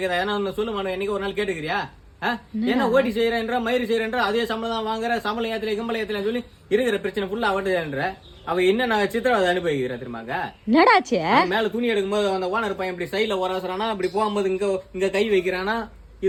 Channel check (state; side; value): identical; both; correlation 1.00